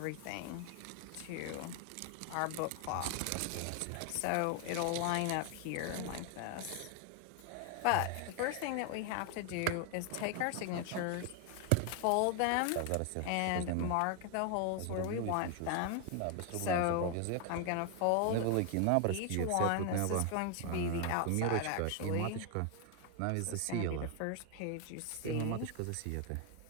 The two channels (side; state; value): both; different; correlation 0.01